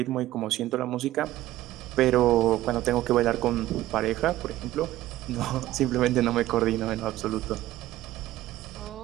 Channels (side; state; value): left; quieter; 15.2 dB